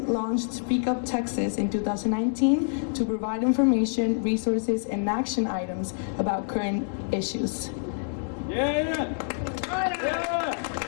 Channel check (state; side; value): silent; right; digital silence